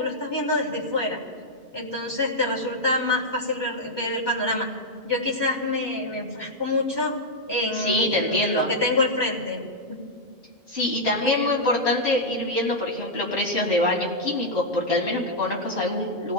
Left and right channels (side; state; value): both; normal; correlation -0.05